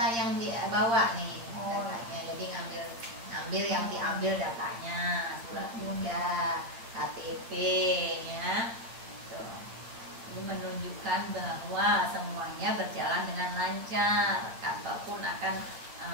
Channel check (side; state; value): left; late; 8.8 ms